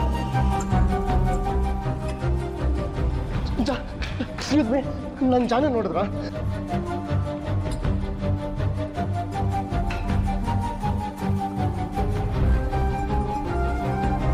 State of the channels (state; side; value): identical; both; correlation 1.00